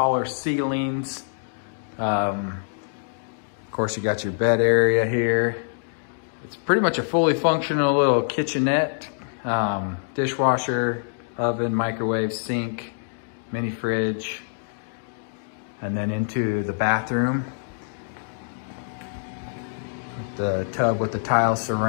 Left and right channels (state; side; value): silent; right; digital silence